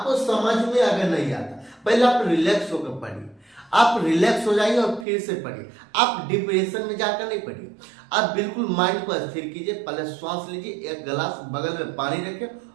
समझ में अगर नहीं आता, पहले आप रिलैक्स होकर पढ़िए। आप रिलैक्स हो जाइए और फिर से पढ़िए। आप डिप्रेशन में जाकर नहीं पढ़िए। आप बिल्कुल माइंड को स्थिर कीजिए। पहले श्वास लीजिए, एक गिलास बगल में पानी रखें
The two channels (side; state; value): left; drops out; at 5.1 s